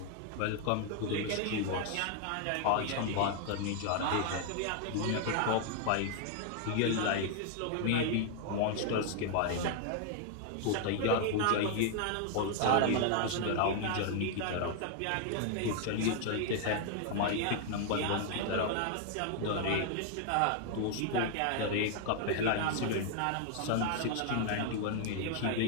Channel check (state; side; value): different; both; correlation 0.00